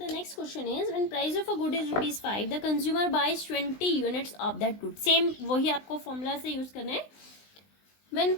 next question is when price of a good is ₹5 the consumer buys 20 units of that good. Same वही आपको formula से use करना है. When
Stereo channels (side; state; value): right; late; 20 ms